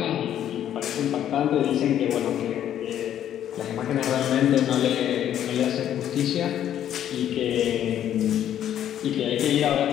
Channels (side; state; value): right; quieter; 10.7 dB